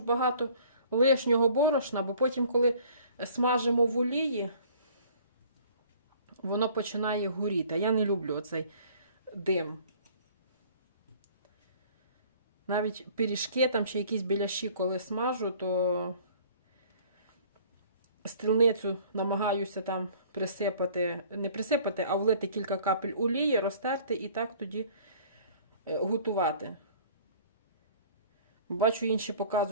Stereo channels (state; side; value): inverted; both; correlation -0.52